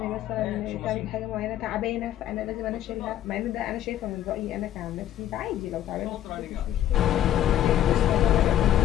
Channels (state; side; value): quieter; right; 11.7 dB